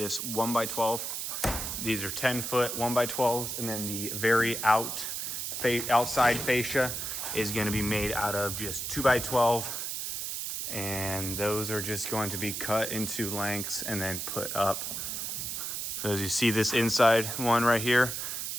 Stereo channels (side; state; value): right; noise; hiss, 4 dB below the sound